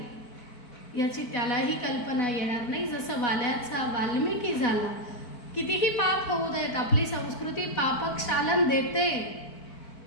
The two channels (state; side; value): late; right; 4.1 ms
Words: याची त्यालाही कल्पना येणार नाही. जसं वाल्याचा वाल्मिकी झाला. कितीही पाप होऊ देत, आपली संस्कृती पापक्षालन देते,